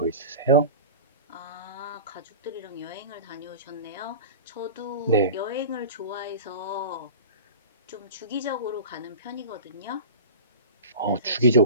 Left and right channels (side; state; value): both; inverted; correlation -0.33